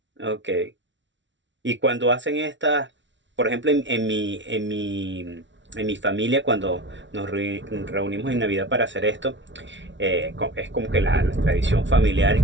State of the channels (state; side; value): late; left; 0.54 ms